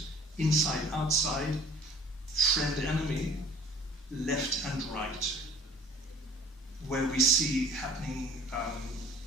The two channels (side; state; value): both; normal; correlation 0.50